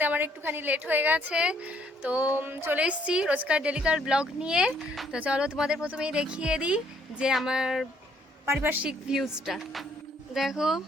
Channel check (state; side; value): normal; both; correlation 0.66